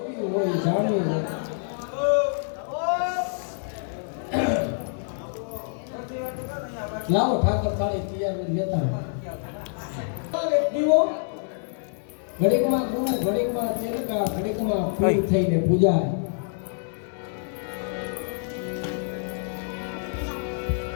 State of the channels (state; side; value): silent; right; digital silence